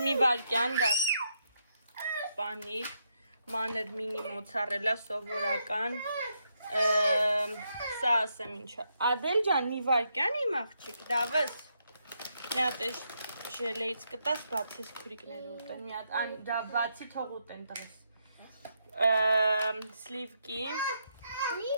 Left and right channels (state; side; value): inverted; both; correlation -0.79